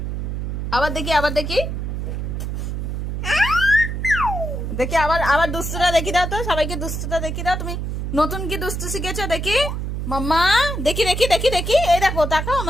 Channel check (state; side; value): noise; right; hum, 3 dB below the sound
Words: আবার দেখি, আবার দেখি, দেখি আবার, আবার দুষ্টুটা দেখি দাও তো, সবাইকে দুষ্টুটা দেখি দাও। তুমি নতুন কি দুষ্টু শিখেছো দেখি মাম্মা, দেখি দেখি দেখি দেখি, এই দেখো, তাকাও